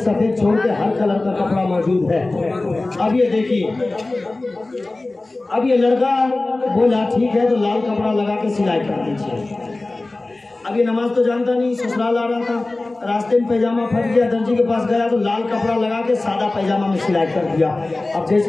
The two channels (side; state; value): right; quieter; 3.0 dB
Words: छोड़ के हर कलर का कपड़ा मौजूद है। अब ये देखिए, अब ये लड़का बोला ठीक है तो लाल कपड़ा लगा के सिलाई कर दीजिए। अब ये नमाज तो जानता नहीं, ससुराल आ रहा था, रास्ते में पैजामा फट गया, दर्जी के पास गया तो लाल कपड़ा लगा के सादा पैजामा में सिलाई कर दिया। अब